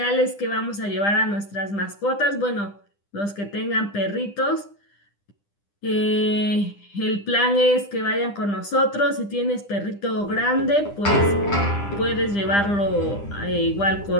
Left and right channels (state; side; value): late; right; 10 ms